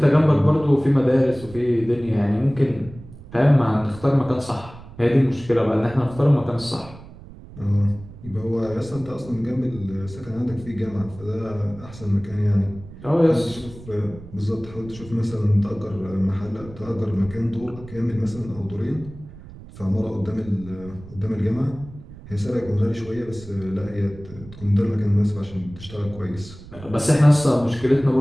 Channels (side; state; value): right; noise; rumble, 17 dB below the sound